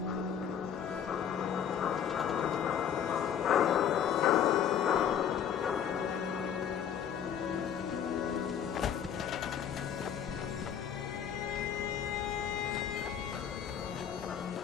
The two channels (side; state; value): right; quieter; 8.6 dB